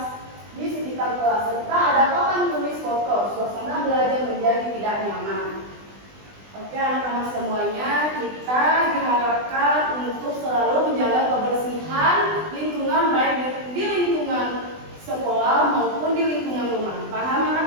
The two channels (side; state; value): left; late; 20 ms